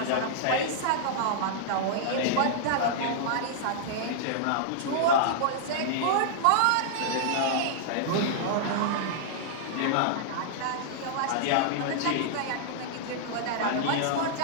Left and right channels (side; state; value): both; different; correlation -0.02